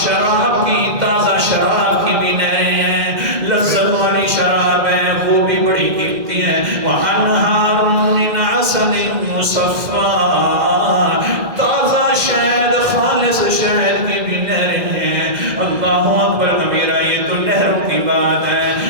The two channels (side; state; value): left; late; 2.0 ms